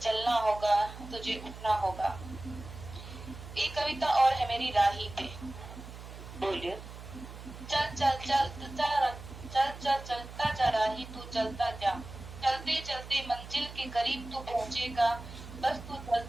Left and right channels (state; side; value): noise; right; hum, 13 dB below the sound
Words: चलना होगा। तुझे उठना होगा। एक कविता और है मेरी राही पे। बोलिए। चल चल चल चलता जा राही तू चलता जा, चलते चलते मंजिल के करीब तू पहुंचेगा। बस तू